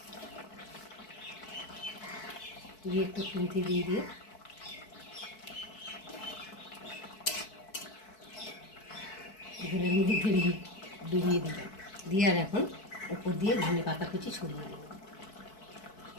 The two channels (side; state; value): right; late; 4.6 ms